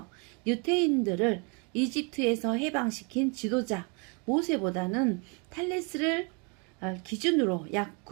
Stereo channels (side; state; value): left; quieter; 34.0 dB